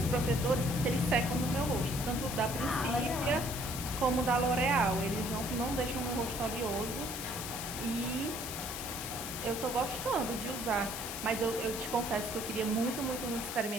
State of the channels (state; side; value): noise; left; hiss, 6 dB below the sound